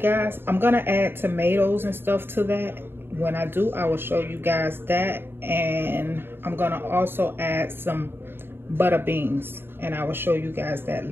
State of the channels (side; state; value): left; late; 0.11 ms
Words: I'm gonna add tomatoes and stuff to that. When I do, I will show you guys that, and I'm gonna also add some butter beans, and I will show you guys that